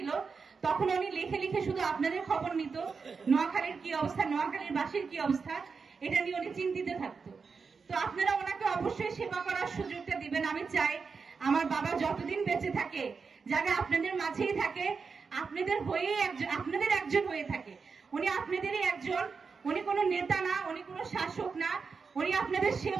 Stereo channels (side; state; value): left; quieter; 5.1 dB